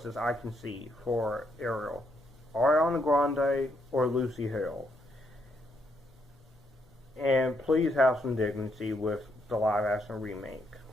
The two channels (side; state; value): both; normal; correlation 0.75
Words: I can see for Ariel: Ariana Grande or Lucy Hale. And please have some dignity with the live action remake.